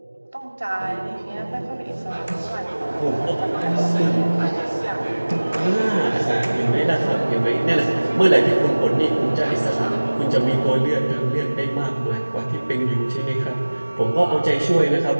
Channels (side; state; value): both; inverted; correlation -1.00